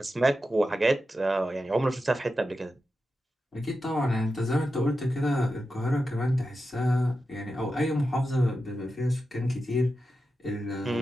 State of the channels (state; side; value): normal; both; correlation 0.90